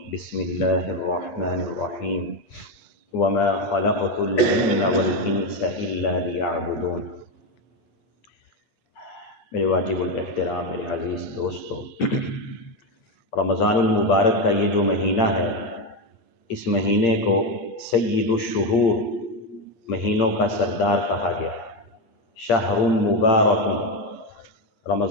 بسم الله الرحمن الرحيم وما خلقت الجن والإنس إلا ليعبدون۔ میرے واجب الاحترام میرے عزیز دوستو، رمضان المبارک کا یہ جو مہینہ ہے، اس مہینے کو سید الشہور، مہینوں کا سردار کہا گیا۔ شہر مبارک،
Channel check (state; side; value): late; right; 8.7 ms